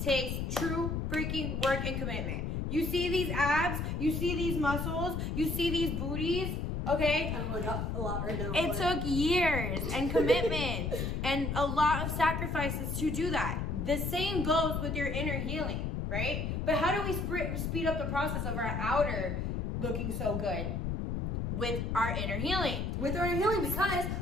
takes true freaking work and commitment. You see these abs, you see these muscles, you see these booties. Okay? I really got a lot right now. It took years and commitment and a lot of sacrifices to do that. The same goes with your inner healing, right? But how do we speed up the process of our outer looking so good? With our inner healing. With our inner healing, because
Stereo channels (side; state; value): left; noise; rumble, 2 dB below the sound